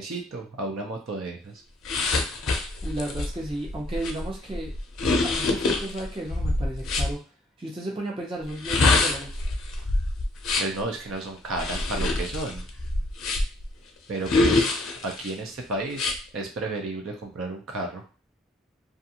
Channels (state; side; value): normal; both; correlation 0.63